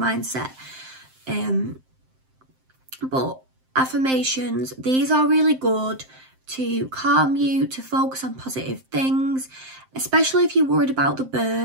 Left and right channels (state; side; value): late; left; 7.7 ms